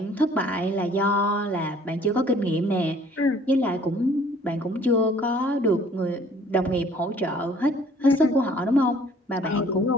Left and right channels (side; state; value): both; normal; correlation 0.56